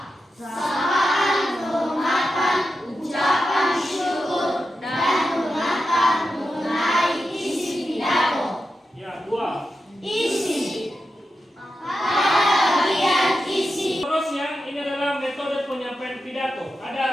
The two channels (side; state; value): both; normal; correlation 0.90